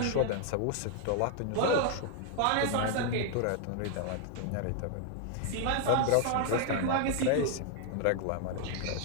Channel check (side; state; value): both; different; correlation 0.00